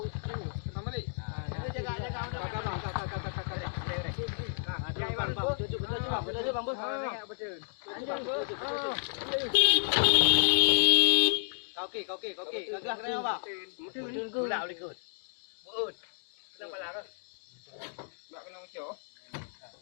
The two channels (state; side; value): silent; right; digital silence